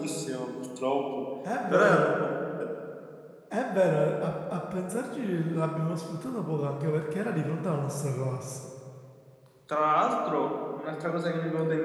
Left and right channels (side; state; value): both; identical; correlation 1.00